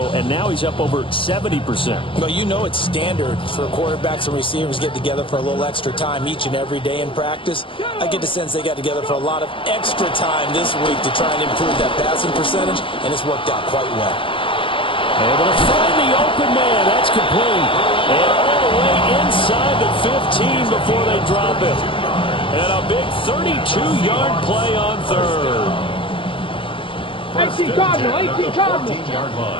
and now he's up over 70%. Well, you know it's standard for quarterbacks and receivers to get together for a little extra time each and every day in practice. I get the sense they got together for a lot of extra time this week to try and improve that passing percentage, and it's worked out quite well. Able to find the open man. That's complete. And all the way inside the 15 before they drop it. And a big 32-yard play on third. 18 Cardinal, 18 Cardinal. 14-yard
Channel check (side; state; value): right; late; 0.25 ms